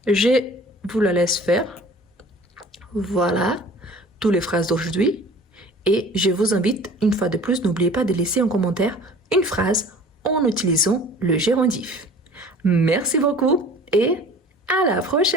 je vous la laisse faire. Voilà, toutes les phrases d'aujourd'hui. Et je vous invite, une fois de plus, n'oubliez pas de laisser en commentaire une phrase en utilisant le gérondif. Merci beaucoup et à la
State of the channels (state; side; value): normal; both; correlation 0.46